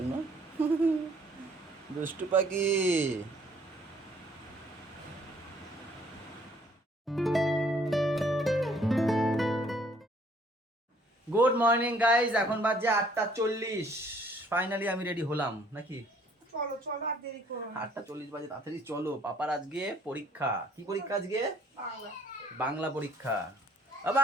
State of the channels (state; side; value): normal; both; correlation 0.61